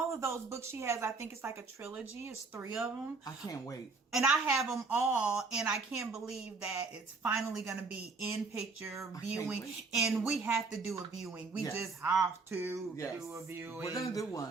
of those books she has, I think it's like a trilogy. It's 3 of them. I can't wait. And I have them all, and I can't believe that it's finally going to be in picture viewing. And we have to do a viewing. We just have to do a viewing. We're going to do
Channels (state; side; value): quieter; left; 4.2 dB